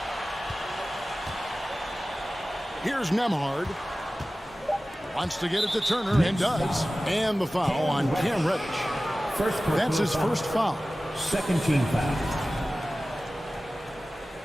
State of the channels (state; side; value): normal; both; correlation 0.96